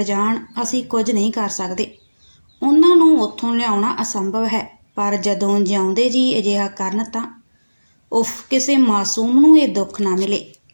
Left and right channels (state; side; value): inverted; both; correlation -1.00